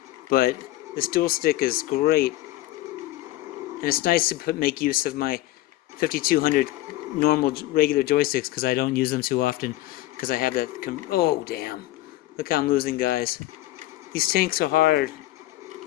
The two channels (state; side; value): quieter; right; 16.6 dB